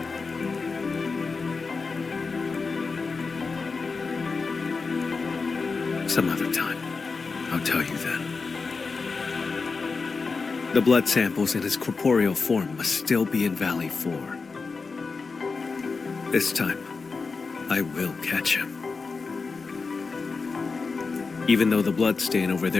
Some other time. I'll tell you then. The blood samples in his corporeal form must still be in Valley 4. This time, I will catch him. Even though the blood stain over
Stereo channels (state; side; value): quieter; right; 4.5 dB